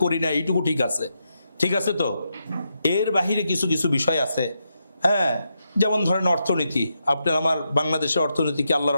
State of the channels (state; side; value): inverted; both; correlation -0.83